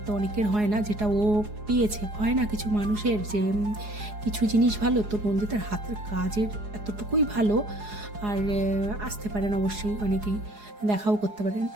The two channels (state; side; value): late; left; 4.8 ms